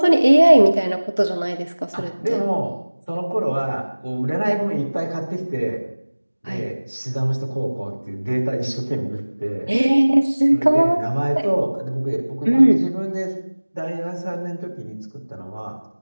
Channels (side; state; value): both; inverted; correlation -1.00